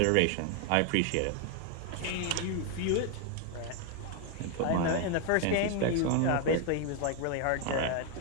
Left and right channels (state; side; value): different; both; correlation 0.00